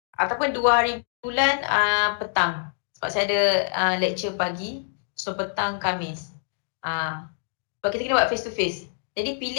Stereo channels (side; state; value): right; silent; digital silence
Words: ataupun 2 hari bulan petang. Sebab saya ada lecture pagi, so petang Khamis. Sebab kita kena buat face to face. Jadi